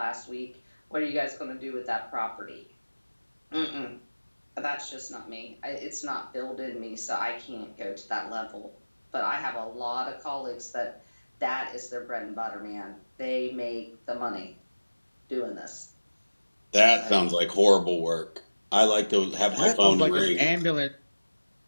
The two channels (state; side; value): inverted; both; correlation -1.00